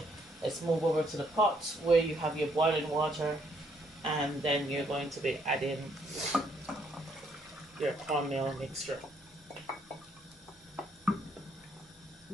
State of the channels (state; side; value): normal; both; correlation 0.70